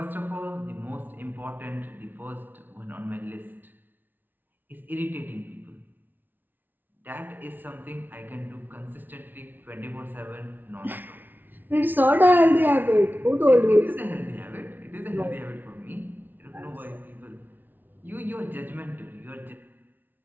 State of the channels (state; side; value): late; left; 0.088 ms